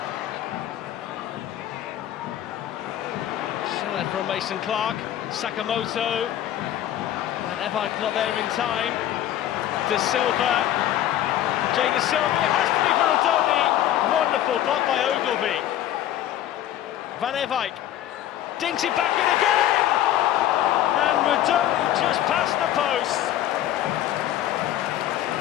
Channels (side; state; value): right; quieter; 12.2 dB